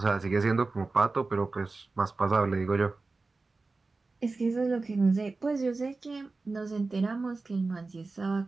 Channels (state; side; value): quieter; left; 3.7 dB